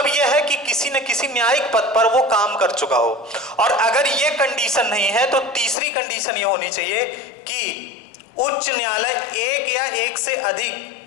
यह है कि किसी न किसी न्यायिक पद पर वो काम कर चुका हो। और अगर ये कंडीशन नहीं है तो तीसरी कंडीशन ये होनी चाहिए कि उच्च न्यायालय एक या एक से अधिक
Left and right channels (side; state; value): right; drops out; at 5.8 s